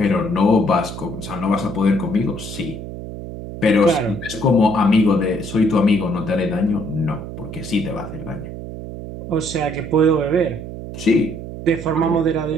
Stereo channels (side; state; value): right; noise; hum, 10 dB below the sound